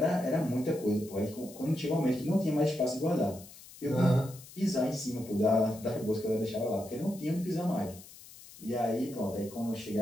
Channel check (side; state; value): left; noise; hiss, 19 dB below the sound